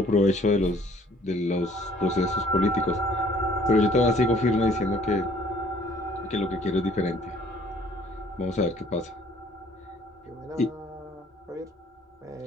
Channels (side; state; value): both; normal; correlation 0.58